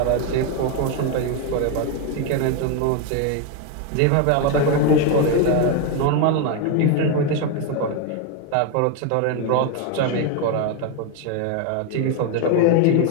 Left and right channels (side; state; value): both; different; correlation 0.01